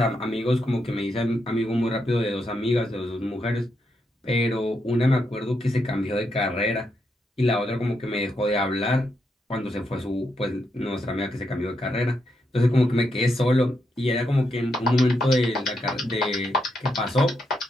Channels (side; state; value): both; normal; correlation 0.81